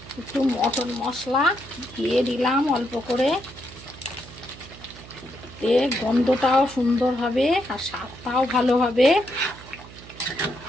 একটু মটন মশলা দিয়ে দিলাম অল্প করে। এর গন্ধটাও সুন্দর হবে আর স্বাদটাও ভালো হবে,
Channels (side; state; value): right; noise; hum, 18 dB below the sound